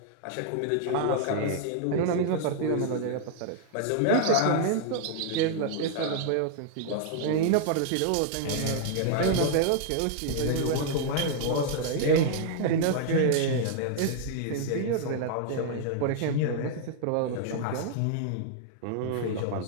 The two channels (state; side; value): different; both; correlation -0.01